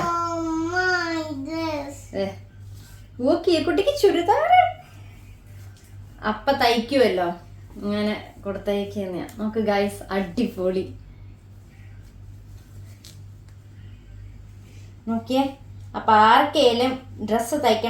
കുട്ടിക്ക് ചുരിദാർ അപ്പ തയ്ക്കുമല്ലോ, ഇങ്ങനെ കൊടുത്തയക്കുന്നയാ. നമുക്ക് ഗൈസ് അടിപൊളി നോക്കിയേ. അപ്പൊ ആർക്കേലും ഡ്രസ്സ്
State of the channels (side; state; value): both; identical; correlation 1.00